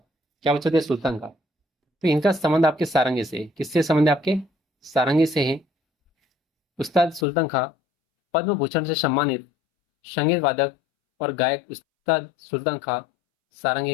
क्या बच्चों थे? सुल्तान खां। तो इनका संबंध आपके सारंगी से है। किससे संबंध है आपके? सारंगी से है। उस्ताद सुल्तान खां पद्म भूषण से सम्मानित संगीत वादक और गायक उस्ताद सुल्तान खां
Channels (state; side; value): drops out; right; at 7.2 s